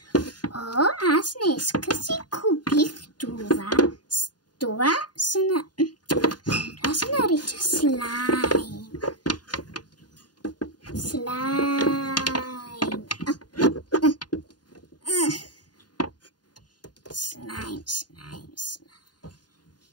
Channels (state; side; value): late; right; 0.70 ms